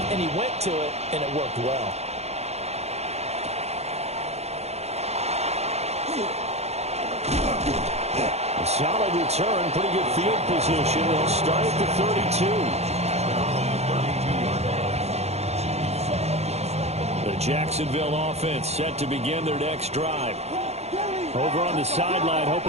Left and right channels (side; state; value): left; late; 0.31 ms